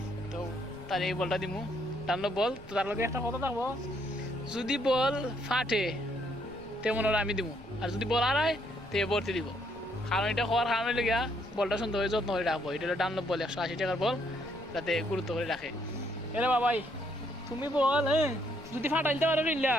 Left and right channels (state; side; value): noise; left; rumble, 21 dB below the sound